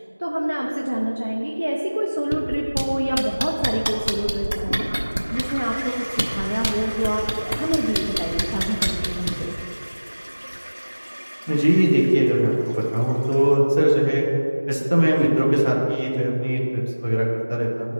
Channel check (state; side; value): inverted; both; correlation -1.00